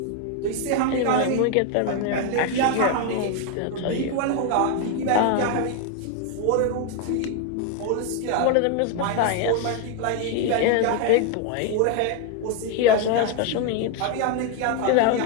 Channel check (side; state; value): both; different; correlation 0.01